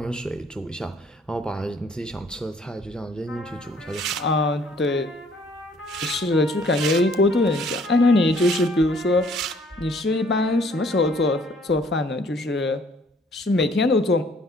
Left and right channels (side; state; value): both; normal; correlation 0.60